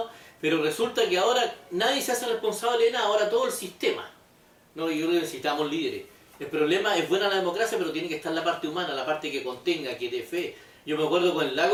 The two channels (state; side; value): identical; both; correlation 1.00